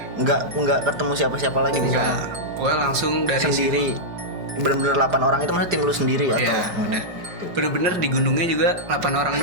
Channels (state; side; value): late; left; 5.5 ms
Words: Enggak ketemu siapa-siapa lagi di sana. Enggak. Gua langsung dari Sendiri. situ. Bener-bener 8 orang itu maksudnya tim lu sendiri atau? Iya, udah. Gitu. Bener-bener di gunungnya juga 8 orang